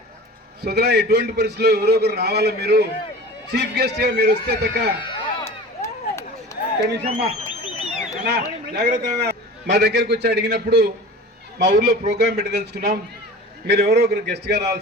సోదరా ఎటువంటి పరిస్థితుల్లో ఎవరో ఒకరు రావాలో మీరు చీఫ్ గెస్ట్ గా మీరు వస్తే తక్క జాగ్రత్త మా దగ్గరికి వచ్చి అడిగినప్పుడు మా ఊర్లో ప్రోగ్రామ్ పెట్టదలుచుకున్నాం, మీరు ఎవరో ఒకరు గెస్ట్గా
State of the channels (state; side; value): normal; both; correlation 0.37